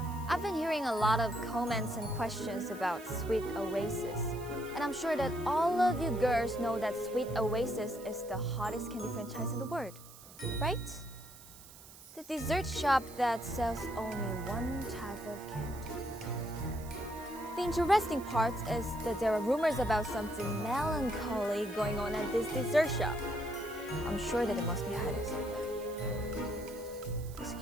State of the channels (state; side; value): noise; right; hiss, 19 dB below the sound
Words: I've been hearing a lot of comments and questions about Sweet Oasis. And I'm sure that all of you girls know that Sweet Oasis is the hottest candy franchise in the world, right? The dessert shop that sells only one type of candy. The interesting part is that there are rumors about something melancholy going on at this dessert shop. I'm sure that it must be hiding something. Does